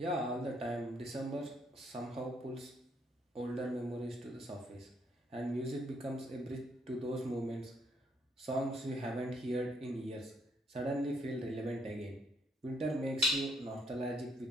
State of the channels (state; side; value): normal; both; correlation 0.71